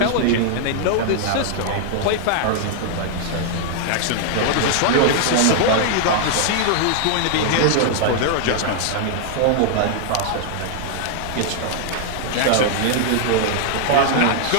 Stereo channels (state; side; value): different; both; correlation 0.00